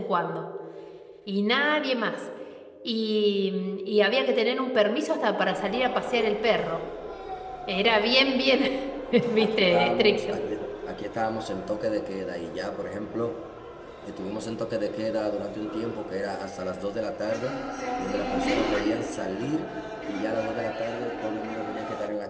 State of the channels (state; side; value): identical; both; correlation 1.00